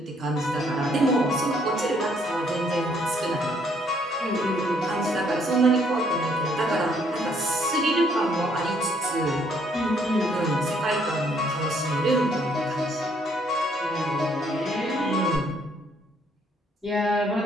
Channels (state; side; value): normal; both; correlation 0.67